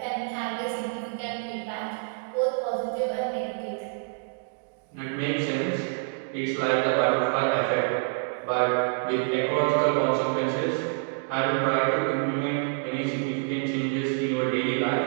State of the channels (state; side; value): silent; left; 60 dB below the other